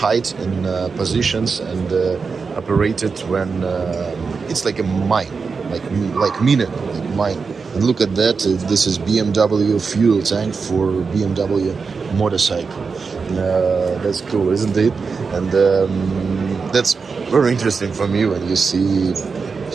in positions and operated when it's like a mine, like mine. And look at that. This is BMW fuel tank for BMW motorcycle. That's cool, isn't it? And that's very interesting for me when you see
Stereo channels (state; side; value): quieter; left; 5.0 dB